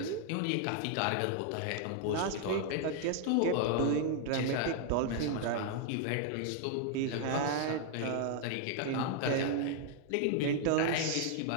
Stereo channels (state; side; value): different; both; correlation 0.00